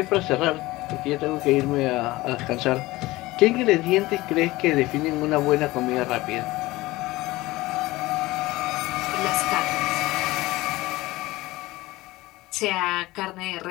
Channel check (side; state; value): right; quieter; 19.3 dB